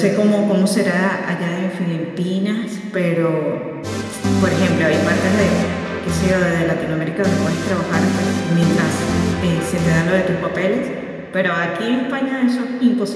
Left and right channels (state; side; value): identical; both; correlation 1.00